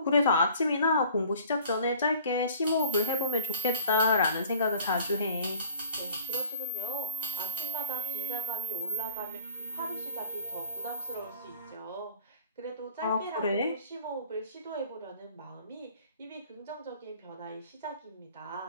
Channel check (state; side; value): inverted; both; correlation -0.50